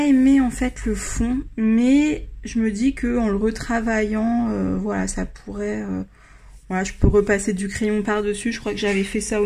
aimé en fait le fond, mais je me dis que en le retravaillant, voilà, ça pourrait, voilà, je peux repasser du crayon par-dessus. Je crois que j'avais fait ça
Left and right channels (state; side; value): identical; both; correlation 1.00